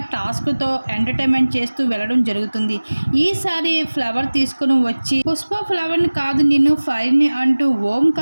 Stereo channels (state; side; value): inverted; both; correlation -1.00